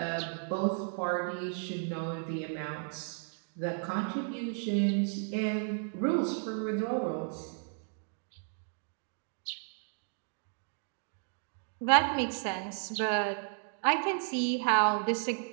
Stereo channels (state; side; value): silent; left; 55 dB below the other